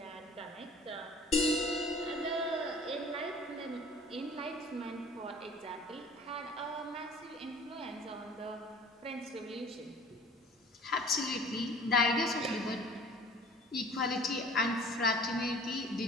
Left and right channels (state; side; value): normal; both; correlation 0.48